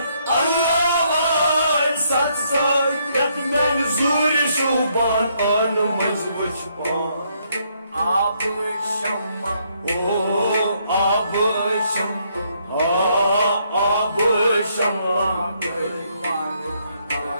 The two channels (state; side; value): inverted; both; correlation -0.72